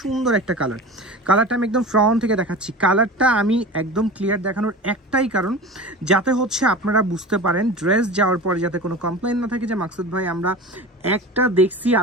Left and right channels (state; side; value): normal; both; correlation 0.34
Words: একটা কালারটা আমি একদম ফ্রন্ট থেকে দেখাচ্ছি। কালারটা আমি একদম ক্লিয়ার দেখানোর একটাই কারণ, যাতে হচ্ছে আপনারা বুঝতে পারেন ড্রেস যাওয়ার পরে যাতে কোনো কমপ্লেন না থাকে যে মাকসুদ ভাই আমরা একটা দেখছি